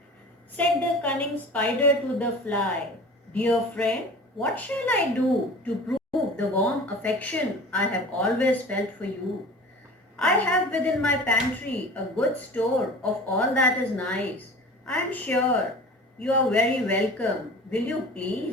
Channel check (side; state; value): both; normal; correlation 0.39